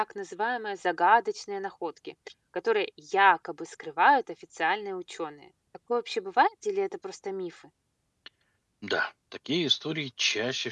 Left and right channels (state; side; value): identical; both; correlation 1.00